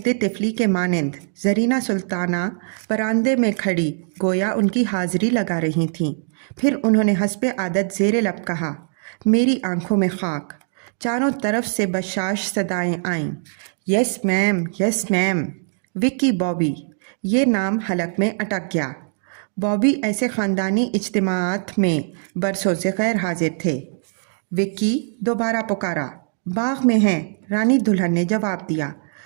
तिफली के मानंद ज़रीना सुल्ताना बरामदे में खड़ी गोया उनकी हाज़िरी लगा रही थीं। फिर उन्होंने हस्बे आदत ज़ेरे लब कहा, मेरी आंखों में खाक। चारों तरफ से बशाश सदाएं आईं, yes ma'am, yes ma'am. Vicky Bobby, ये नाम हलक में अटक गया। बॉबी ऐसे ख़ानदानी इज्तिमाआत में बरसों से गैर हाजिर थे। विक्की दोबारा पुकारा, बाग में हैं, रानी दुल्हन ने जवाब दिया।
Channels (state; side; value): silent; left; digital silence